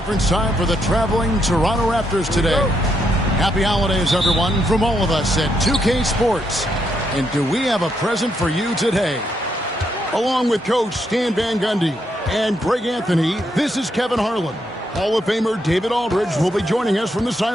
time for the traveling Toronto Raptors today. Happy holidays, everyone, from all of us at 2K Sports. And do we have a present for you today? Along with Coach Stan Van Gundy and Greg Anthony, this is Kevin Harlan. Hall of Famer David Aldridge will be joining us from the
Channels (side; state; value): both; normal; correlation 0.78